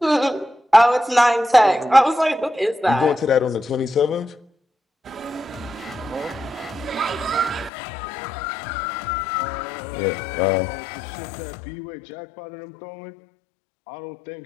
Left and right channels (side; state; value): right; drops out; at 7.7 s